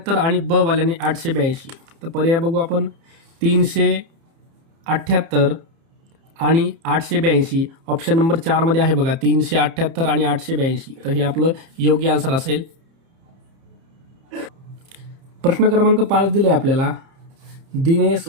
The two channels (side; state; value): left; late; 30 ms